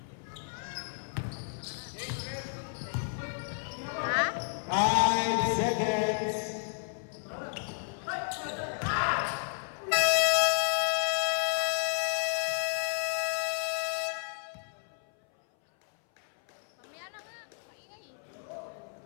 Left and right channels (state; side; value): silent; right; 57 dB below the other